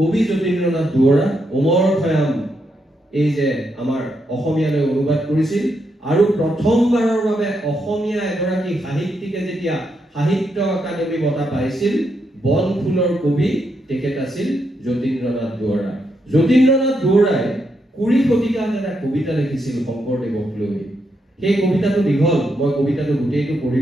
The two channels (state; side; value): normal; both; correlation 0.81